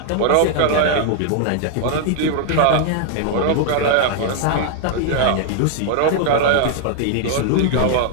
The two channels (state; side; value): different; both; correlation 0.00